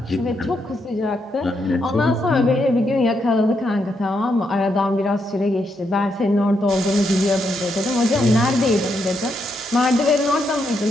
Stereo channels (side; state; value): both; normal; correlation 0.80